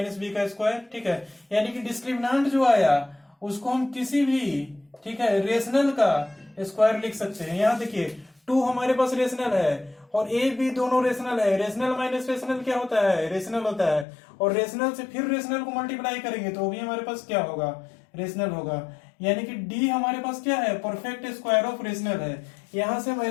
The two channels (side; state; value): right; drops out; at 14.1 s